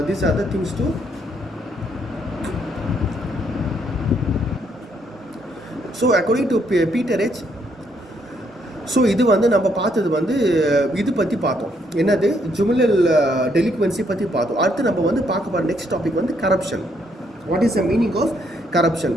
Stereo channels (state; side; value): normal; both; correlation 0.72